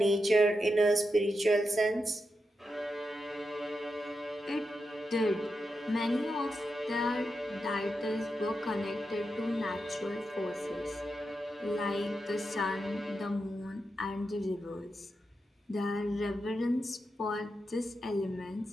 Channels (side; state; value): both; normal; correlation 0.87